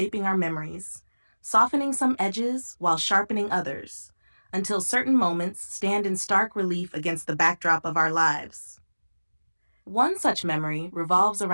our memories, softening some edges while sharpening others, until certain moments stand in stark relief against the backdrop of our lives. One such memory revolves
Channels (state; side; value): inverted; both; correlation -1.00